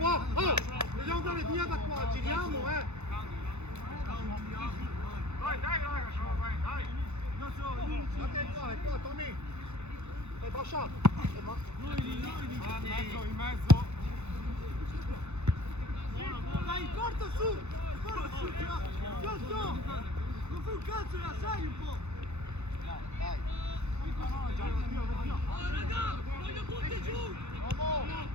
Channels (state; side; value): late; left; 0.81 ms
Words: Oh! Dobbiamo andare via da qua! Giriamo, Dai, raga, dai! Guarda è qua, Tommy! È Bascia! In mezzo. Dai, corta su! Non fai un cazzo, la sai un po'! Dai. Voglio tutti giù!